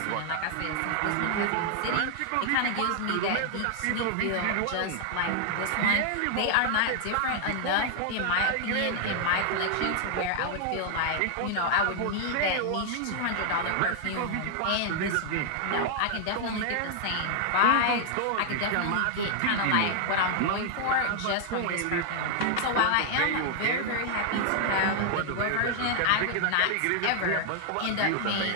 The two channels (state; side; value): different; both; correlation 0.00